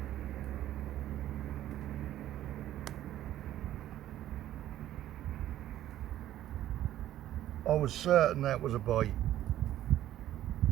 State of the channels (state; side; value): quieter; left; 12.9 dB